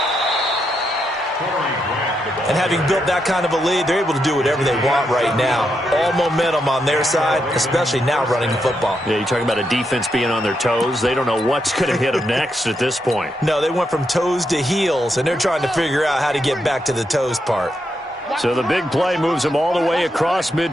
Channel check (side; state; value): both; normal; correlation 0.82